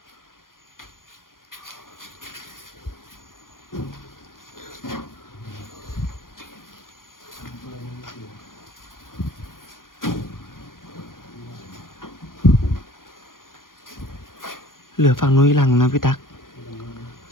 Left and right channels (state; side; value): late; right; 0.90 ms